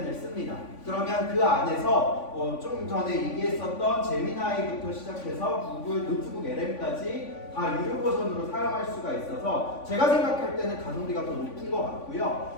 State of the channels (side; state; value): right; late; 3.5 ms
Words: 씁니다. 그러면 그 안에서 좀 전에 얘기했었던 제미나이부터 시작해서 구글 노트북 LM까지 다 유료 버전으로 사용할 수가 있어서 제가 생각할 때는 가성비가 더 높은 것